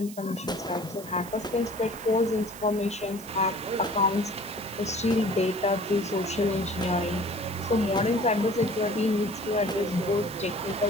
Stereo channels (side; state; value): right; noise; hiss, 16 dB below the sound